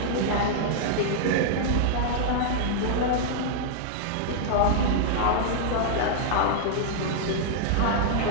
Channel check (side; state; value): both; different; correlation -0.01